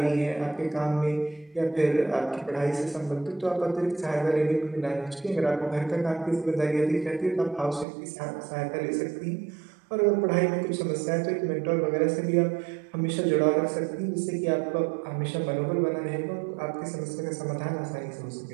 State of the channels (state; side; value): drops out; left; at 7.9 s